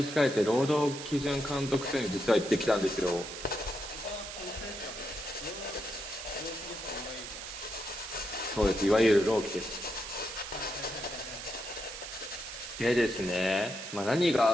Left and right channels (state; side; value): noise; right; hiss, 9 dB below the sound